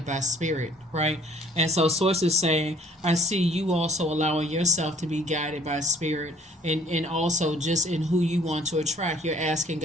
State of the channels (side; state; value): both; normal; correlation 0.56